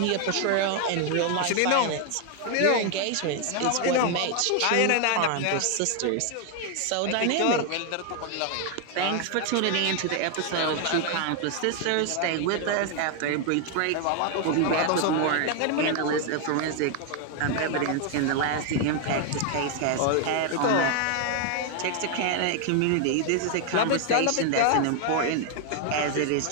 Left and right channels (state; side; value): different; both; correlation 0.00